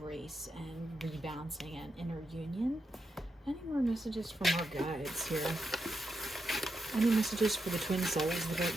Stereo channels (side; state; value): both; normal; correlation 0.85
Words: and rebalancing and inner union. Any more messages from our guides here? Any messages for the twin souls